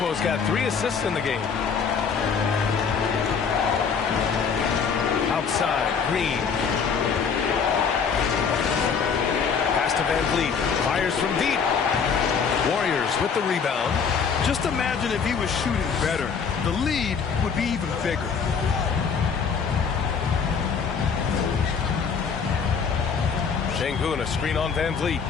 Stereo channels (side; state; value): right; quieter; 6.1 dB